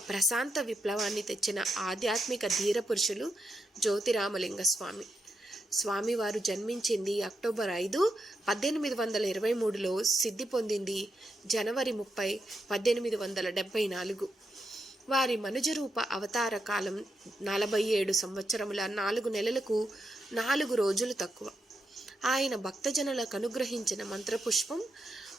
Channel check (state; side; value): normal; both; correlation 0.83